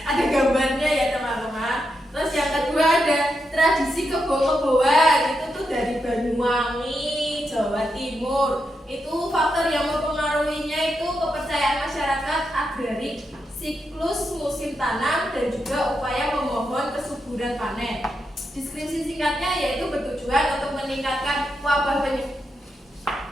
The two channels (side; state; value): both; normal; correlation 0.84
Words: ada gambarnya ya teman-teman. Terus yang kedua ada tradisi kebo-keboan, itu tuh dari Banyuwangi, Jawa Timur. Itu faktor yang mempengaruhinya itu kepercayaan masyarakat agrarik, siklus musim tanam, dan juga upaya memohon kesuburan panen. Deskripsi singkatnya yaitu bertujuan untuk meningkatkan